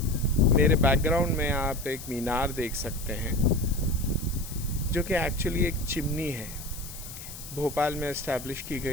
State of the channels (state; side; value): noise; left; hiss, 13 dB below the sound